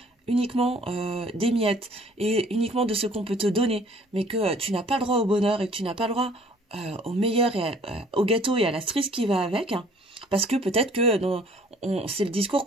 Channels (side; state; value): both; normal; correlation 0.56